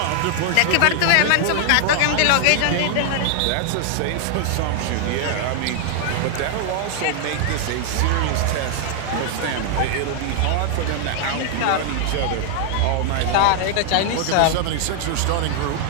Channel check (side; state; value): both; different; correlation 0.00